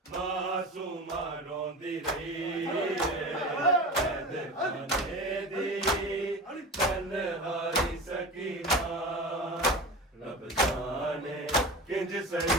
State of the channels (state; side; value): normal; both; correlation 0.31